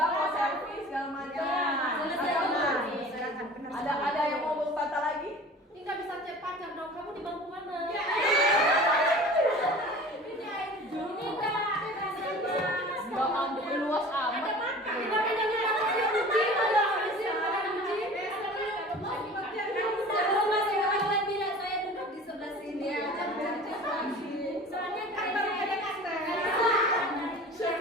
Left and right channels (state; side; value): normal; both; correlation 0.41